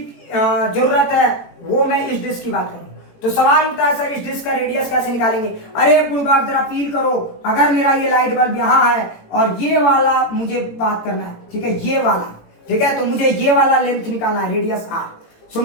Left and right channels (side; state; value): right; late; 18 ms